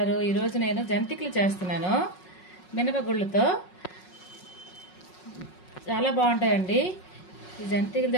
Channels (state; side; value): late; right; 5.5 ms